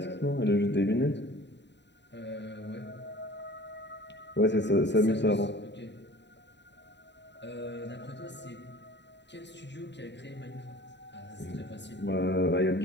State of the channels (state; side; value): late; right; 0.51 ms